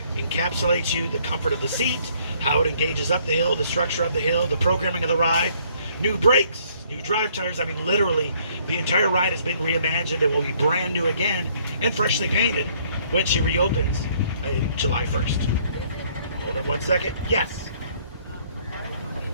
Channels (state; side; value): inverted; both; correlation -0.63